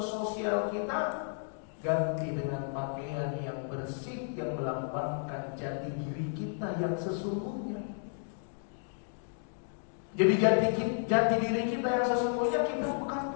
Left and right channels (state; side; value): silent; right; digital silence